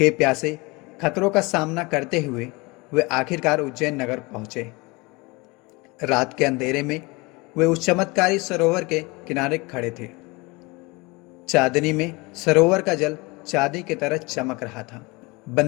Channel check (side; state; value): right; quieter; 25.3 dB